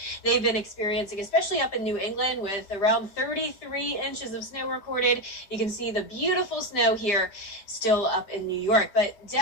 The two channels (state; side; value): late; right; 5.0 ms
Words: they've been experiencing, especially up in New England with around 33 inches of snow recorded. You can see the beautiful snow here still up in New York. But